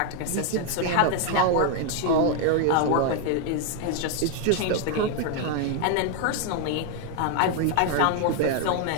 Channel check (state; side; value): different; both; correlation 0.01